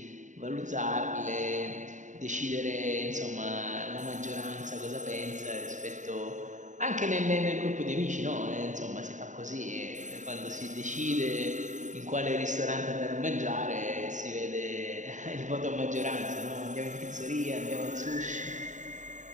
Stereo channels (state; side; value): late; left; 0.36 ms